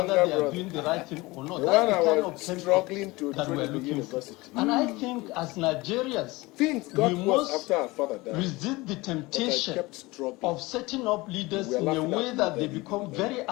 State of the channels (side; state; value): right; quieter; 22.0 dB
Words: they are brother. doing the right thing or not. The That's one I the kind was of struggling to that train we're in the looking university. for. And I think as Nigerians, Things got we worse must after our father died. resist the temptation kept struggling. of setting up leaders We were in a laughing at way him that they then, become you very